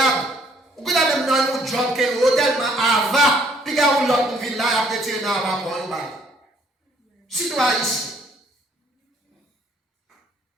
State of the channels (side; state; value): both; normal; correlation 0.64